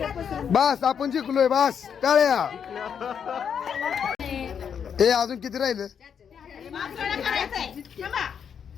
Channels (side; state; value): right; quieter; 7.5 dB